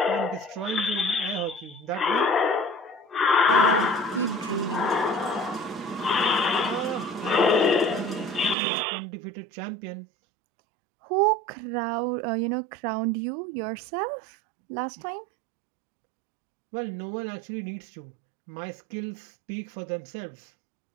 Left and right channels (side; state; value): left; drops out; at 8.6 s